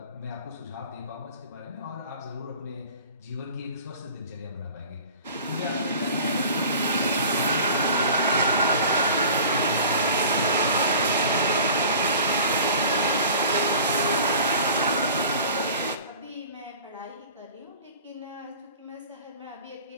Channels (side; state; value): both; inverted; correlation -0.43